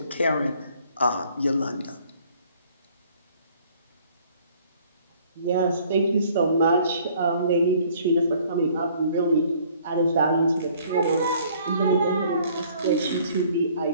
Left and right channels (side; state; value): both; inverted; correlation -0.58